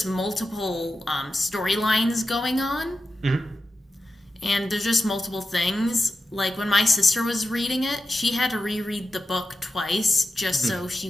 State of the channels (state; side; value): normal; both; correlation 0.92